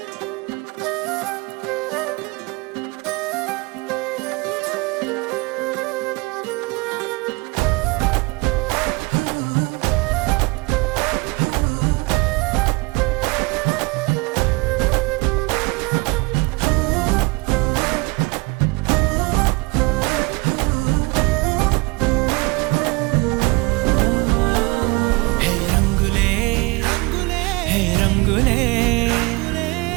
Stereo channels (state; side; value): quieter; left; 25.6 dB